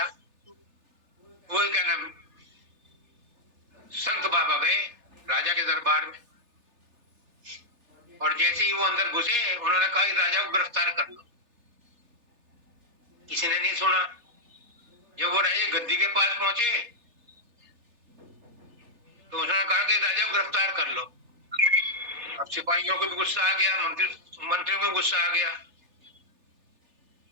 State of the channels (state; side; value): late; left; 3.3 ms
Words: वो क्या नाम संत बाबा गए राजा के दरबार में, और जैसे ही वो अंदर घुसे उन्होंने कहा राजा को गिरफ्तार कर लो। किसी ने नहीं सुना। जब वो राजा गद्दी के पास पहुंचे तो उसने कहा कि राजा को गिरफ्तार कर लो। अब सिपाहियों को भी गुस्सा आ गया, मंत्रियों को गुस्सा आ गया।